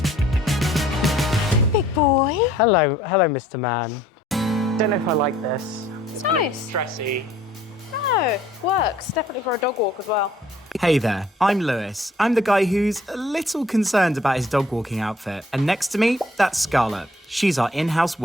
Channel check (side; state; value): both; normal; correlation 0.58